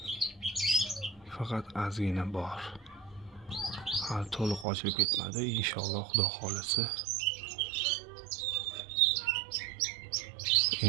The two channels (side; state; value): left; drops out; at 4.7 s